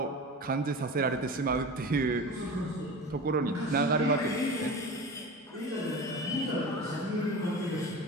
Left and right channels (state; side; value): normal; both; correlation 0.31